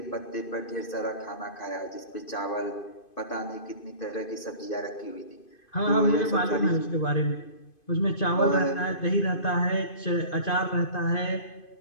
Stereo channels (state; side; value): late; right; 2.5 ms